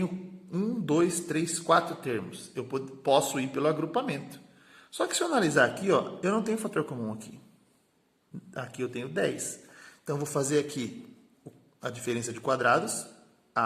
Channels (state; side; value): identical; both; correlation 1.00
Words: 1, 2, 3, 4 termos. Eu posso ir pelo agrupamento. Só que se eu analisar aqui, ó, eu não tenho fator comum aqui. Aqui eu tenho 10. Então, eu vou fazer aqui a diferença de quadrados,